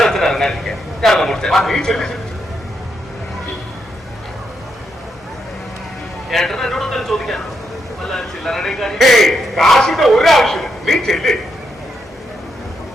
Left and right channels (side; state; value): both; normal; correlation 0.81